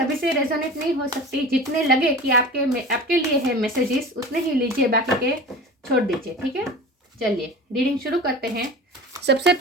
से रेजोनेट नहीं हो सकती। जितने लगे कि आपके लिए है मैसेजेस, उतने ही लीजिए, बाकी के छोड़ दीजिए, ठीक है। चलिए रीडिंग शुरू करते हैं। सबसे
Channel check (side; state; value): both; normal; correlation 0.35